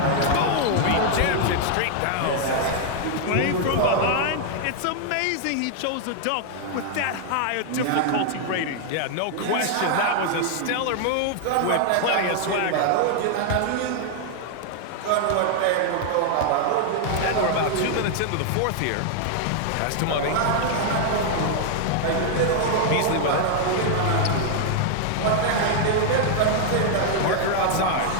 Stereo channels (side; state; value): both; different; correlation 0.00